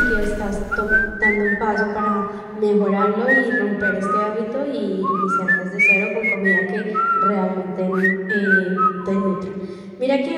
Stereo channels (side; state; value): both; identical; correlation 1.00